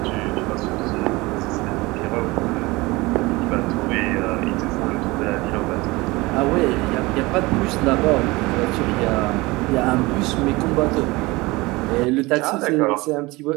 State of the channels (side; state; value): left; quieter; 22.2 dB